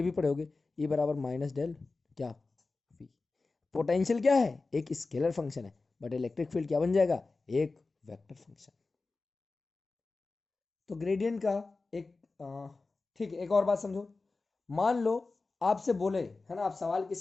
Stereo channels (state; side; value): quieter; right; 3.7 dB